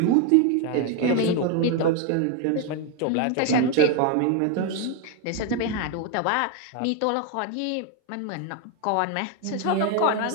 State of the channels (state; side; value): different; both; correlation 0.01